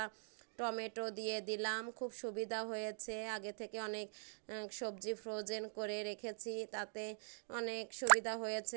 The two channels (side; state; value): left; silent; digital silence